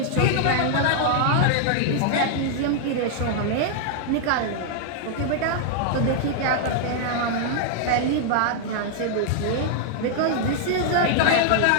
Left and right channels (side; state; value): both; different; correlation 0.00